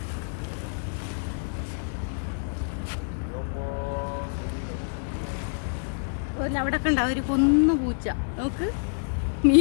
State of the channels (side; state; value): right; silent; digital silence